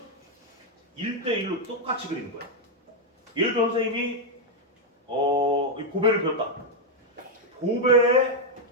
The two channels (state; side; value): normal; both; correlation 0.00